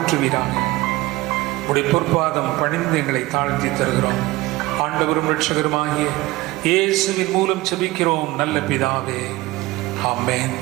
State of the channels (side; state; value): left; quieter; 19.4 dB